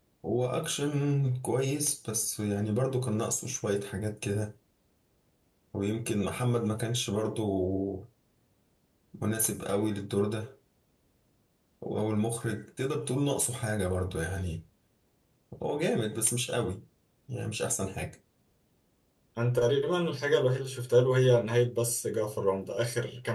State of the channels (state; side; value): identical; both; correlation 1.00